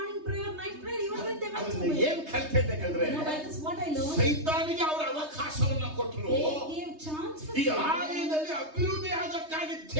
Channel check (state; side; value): late; left; 3.2 ms